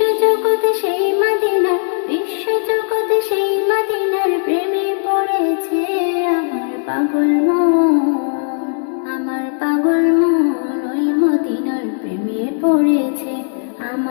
সেই মদিনা, বিশ্বজগতে সেই মদিনার প্রেমে পড়েছে। আমার পাগল মন ওই মদিনার প্রেমে পড়েছে।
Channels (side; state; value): right; silent; digital silence